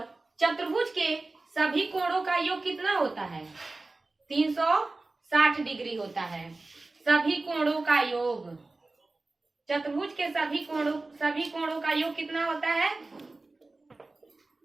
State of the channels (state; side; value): quieter; left; 3.3 dB